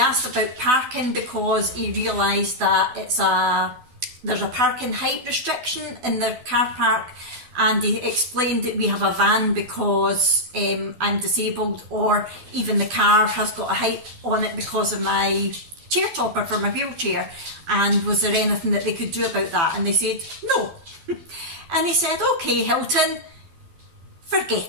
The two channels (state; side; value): late; left; 12 ms